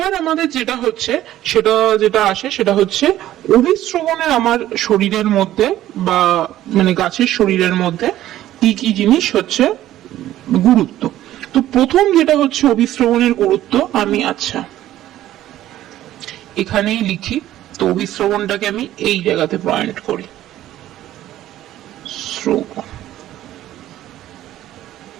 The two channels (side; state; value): left; quieter; 13.5 dB